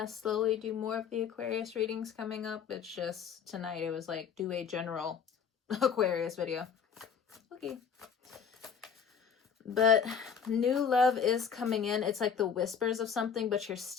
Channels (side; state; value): right; quieter; 7.0 dB